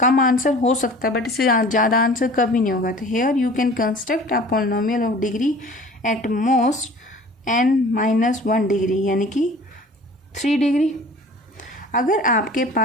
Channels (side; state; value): both; normal; correlation 0.45